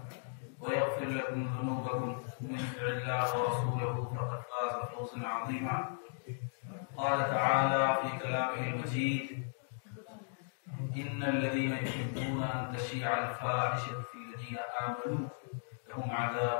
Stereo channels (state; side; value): silent; right; digital silence